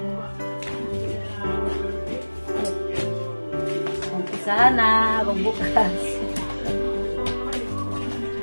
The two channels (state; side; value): inverted; both; correlation -1.00